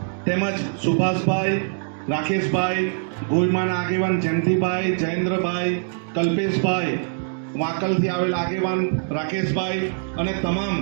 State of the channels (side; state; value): left; silent; digital silence